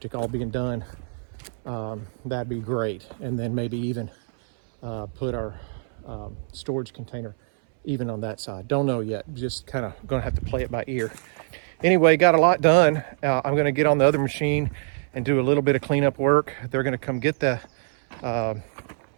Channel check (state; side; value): silent; left; 62 dB below the other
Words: all being done, that'd be great. And then maybe even put our storage container even on that side. Don't know yet. Just kind of gonna have to play it by ear. Anyway, got a lot done. I'm gonna get on the other machine and do a little bit of cleanup work. They're gonna come get the